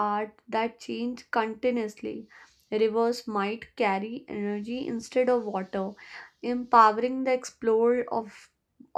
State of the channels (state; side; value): identical; both; correlation 1.00